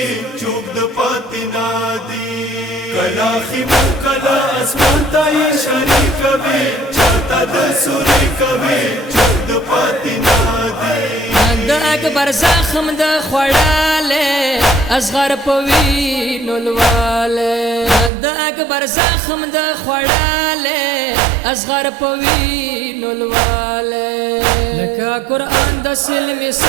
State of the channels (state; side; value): drops out; left; at 18.1 s